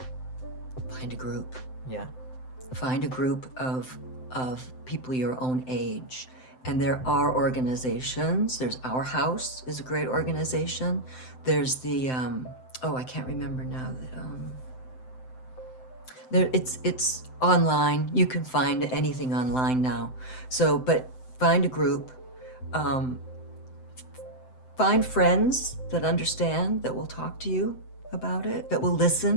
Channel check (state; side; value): late; right; 7.8 ms